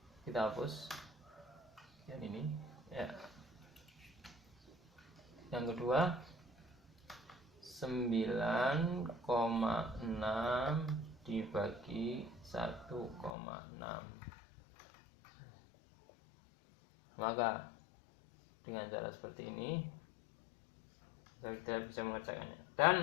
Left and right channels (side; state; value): right; drops out; at 13.3 s